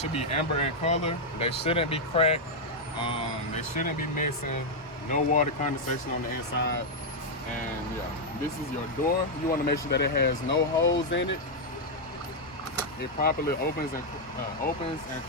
be amber in color. They shouldn't be cracked. They shouldn't be missing. No water condensation on the inside. And yeah, this is your door. You want to make sure that it has no holes in it. It properly opens and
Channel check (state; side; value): normal; both; correlation -0.01